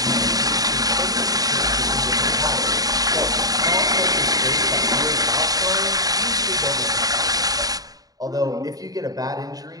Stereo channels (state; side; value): late; left; 0.18 ms